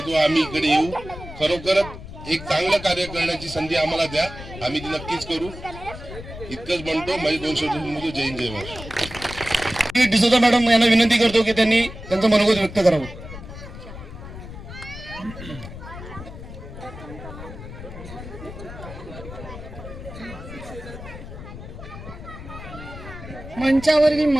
आम्ही इकडे येऊ. खरोखरच एक चांगलं कार्य करण्याची संधी आम्हाला द्या, आम्ही ती नक्कीच करू. इतकंच म्हणतो. माझे 2 शब्द जय हिंद, जय महाराष्ट्र. डिसोजा मॅडम यांना विनंती करतो की त्यांनी त्यांचं मनोगत व्यक्त करावं. मंचावरील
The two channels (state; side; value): noise; left; rumble, 12 dB below the sound